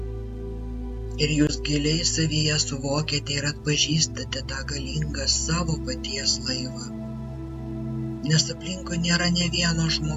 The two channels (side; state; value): both; identical; correlation 1.00